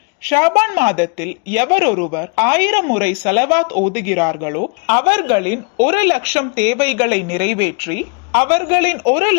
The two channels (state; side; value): quieter; right; 34.3 dB